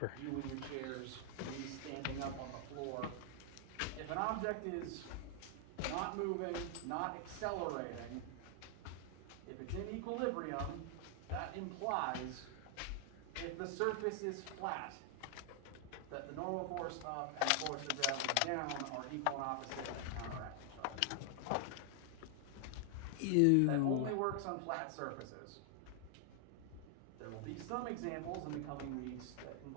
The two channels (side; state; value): both; different; correlation 0.00